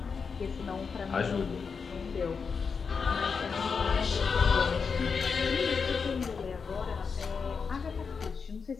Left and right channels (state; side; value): quieter; right; 5.5 dB